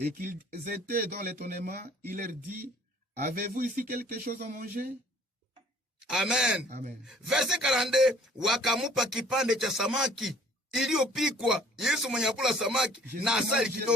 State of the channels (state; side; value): normal; both; correlation 0.56